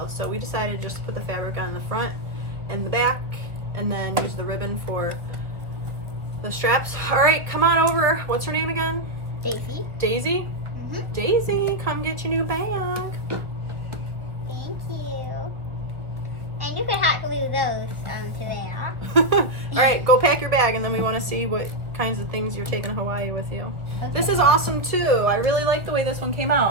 So we decided just to put the fabric on the front and the back, and then use the ribbon for the straps. All right, come on over. What's her name again? Daisy. Daisy? Mm-hmm. Daisy, come get your new bag. Thank you. And you could hot glue those to there. All right, go pack your bag, and then we want to see what kinds of things you're taking to Hawaii with you. Okay. This is awesome too. I really like the way this one came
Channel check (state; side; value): late; left; 1.1 ms